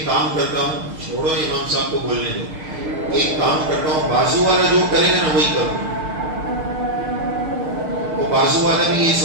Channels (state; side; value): late; left; 6.6 ms